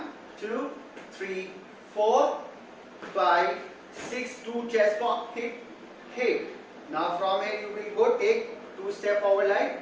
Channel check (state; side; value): identical; both; correlation 1.00